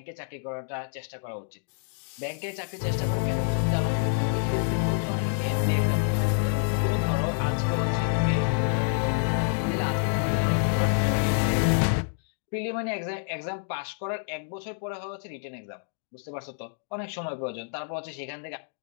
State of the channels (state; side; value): silent; right; digital silence